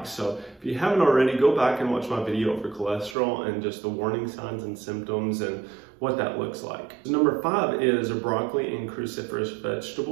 So if you haven't already, go back and watch my video for cholesterol and just the warning signs and symptoms and what that looks like. Number 5 is broccoli and cruciferous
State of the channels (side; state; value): left; drops out; at 3.2 s